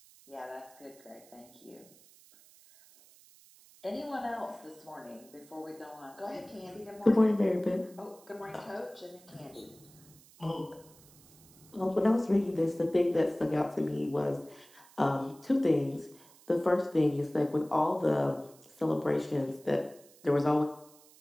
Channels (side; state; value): right; noise; hiss, 25 dB below the sound